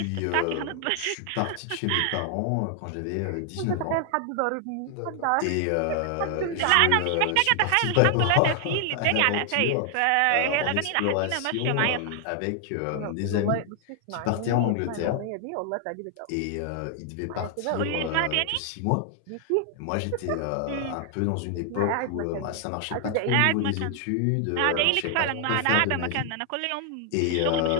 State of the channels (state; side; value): different; both; correlation 0.00